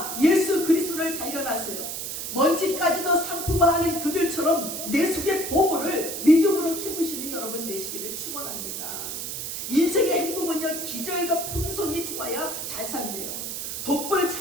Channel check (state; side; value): noise; right; hiss, 5 dB below the sound